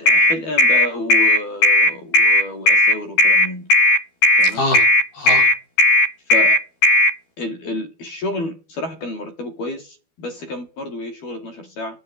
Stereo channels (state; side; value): late; right; 12 ms